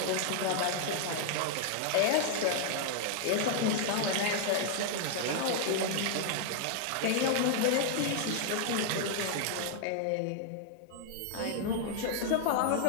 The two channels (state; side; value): different; both; correlation 0.00